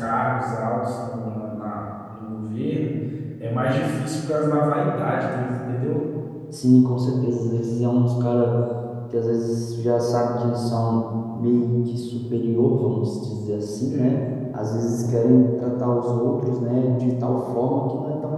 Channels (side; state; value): both; identical; correlation 1.00